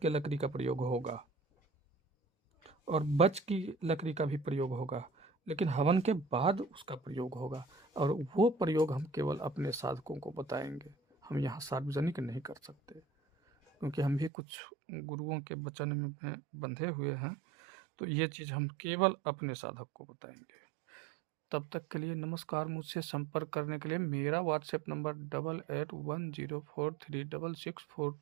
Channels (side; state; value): left; drops out; at 14.3 s